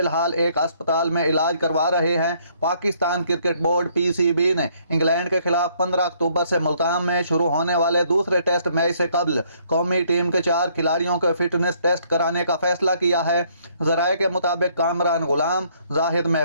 ایک اسپتال میں علاج کروا رہے ہیں۔ پاکستان کرکٹ بورڈ پی سی بی نے انگلینڈ کے خلاف 15 اکتوبر سے ملتان میں شروع ہونے والے دوسرے ٹیسٹ میچ سے قبل قومی ٹیم کے 4 کھلاڑیوں کے فٹنس ٹیسٹ کرانے کا فیصلہ کیا ہے۔ ذرائع کے مطابق کامران غلام، زاہد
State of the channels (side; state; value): both; inverted; correlation -0.65